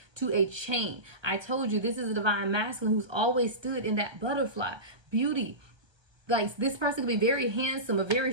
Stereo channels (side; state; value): left; late; 1.2 ms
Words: to a chain. I told you this is a divine masculine who's always stood in that butterfly. Beauty. Like, this person can be very handsome or very